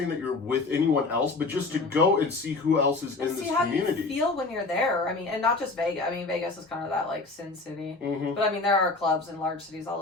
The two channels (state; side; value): quieter; right; 3.6 dB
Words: that you're with anyone else, but just to go and see who else is in this community. See how you feel when you're there. I mean, and not just Vegas. I mean, Vegas is kind of that, like, Sin City. But, I mean, there are clubs in large cities all